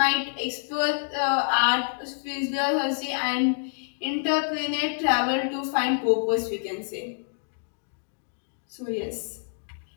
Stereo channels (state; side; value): silent; right; digital silence